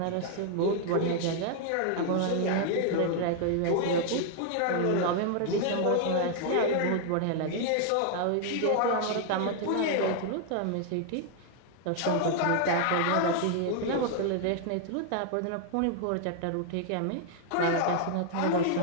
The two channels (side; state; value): both; different; correlation 0.00